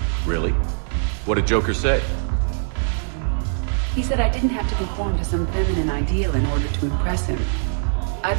Really? What did Joker say? He said I didn't have to conform to some feminine ideal in order to impress him. I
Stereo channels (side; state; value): left; silent; digital silence